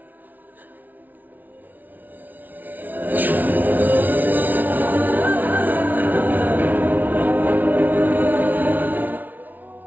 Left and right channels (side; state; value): left; late; 0.082 ms